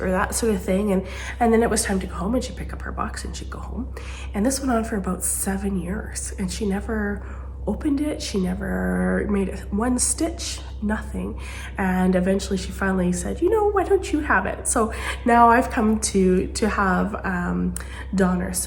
that sort of thing. And then it was time to go home, and she'd pick up her box and she'd go home. And this went on for about 7 years, and she never opened it. She never made one stitch, nothing. And eventually she finally said, why don't you have it? So now I've come to have Donnor.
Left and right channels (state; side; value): identical; both; correlation 1.00